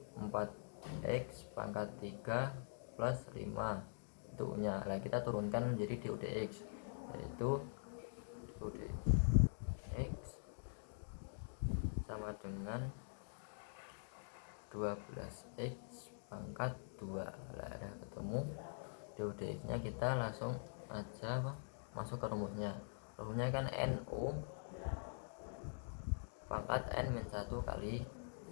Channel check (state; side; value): silent; right; digital silence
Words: 4x pangkat 3 plus 5 itu U nya. Nah, kita turunkan menjadi du dx, yaitu du dx sama dengan 12x pangkat 2. Nah, ada ketemu du dx nya, kita langsung aja masuk ke rumusnya. Rumusnya kan NU pangkat N min 1 kali